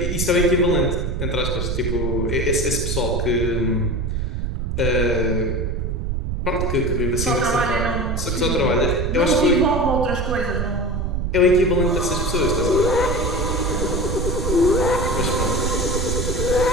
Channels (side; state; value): right; noise; rumble, 1 dB below the sound